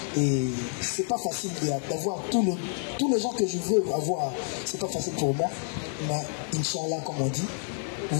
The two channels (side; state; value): right; silent; 59 dB below the other